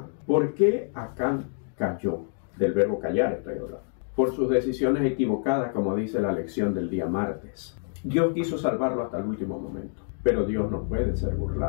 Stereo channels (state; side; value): silent; right; digital silence